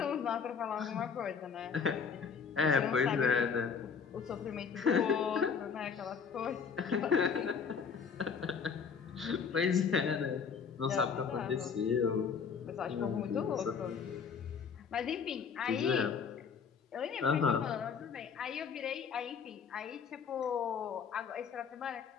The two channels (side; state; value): right; quieter; 6.3 dB